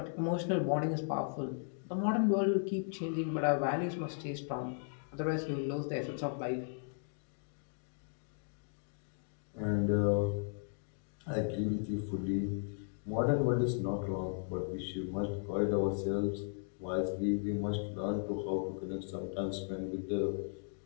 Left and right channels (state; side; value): silent; right; digital silence